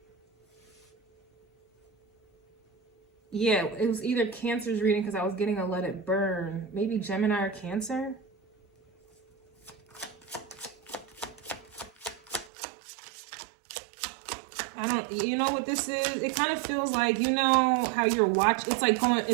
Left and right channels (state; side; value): drops out; left; at 12.5 s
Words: Yeah, it was either Cancer's reading because I was getting a Let It Burn. Maybe Gemini or Cancer? You know what this is? It kind of feels like, you know how you're watching,